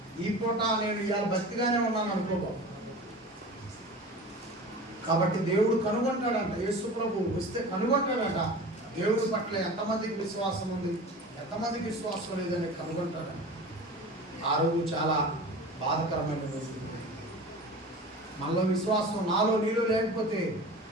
ఈ పూట నేను ఇవాళ భక్తిగానే ఉన్నాను అనుకోకో. కాబట్టి దేవుడు కనుగొంటాడంట. యేసు ప్రభు వస్తే కనుగొంటాడంట. దేవుడి పట్ల ఎంతమందికి విశ్వాసం ఉంది, ఎంతమందికి విశ్వాసం లేదని కనుగొంటాడంట. ఆ రోజు చాలా బాధకరమైన రోజు. మనలో విశ్వాసం నాలో నీలో లేకపోతే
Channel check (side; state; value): both; normal; correlation 0.36